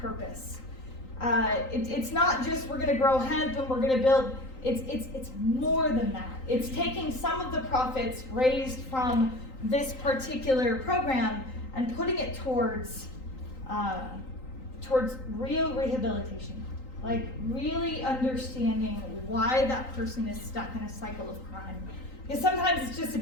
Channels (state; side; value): late; right; 3.9 ms